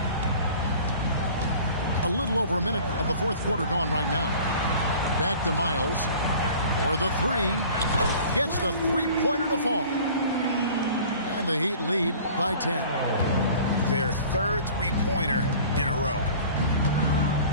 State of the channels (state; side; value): inverted; both; correlation -0.45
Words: A little over a minute of the fourth quarter gone right now. Back to Miles. For the three. Gets the three-pointer to fall. And the Heat lead by 10. Their third three-pointer in a row.